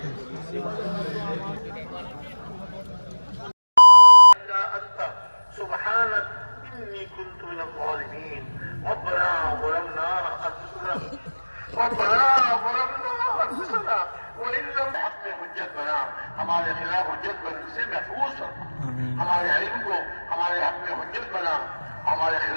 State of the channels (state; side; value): inverted; both; correlation -1.00